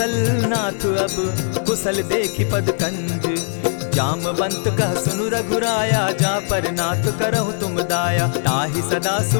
नाथ अब, कुशल देखि पद कंज। जामवंत कह सुनु रघुराया, जा पर नाथ करहु तुम दाया। ताहि सदा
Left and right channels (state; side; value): silent; right; digital silence